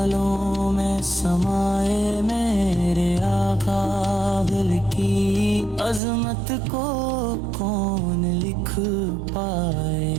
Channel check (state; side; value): drops out; left; at 6.0 s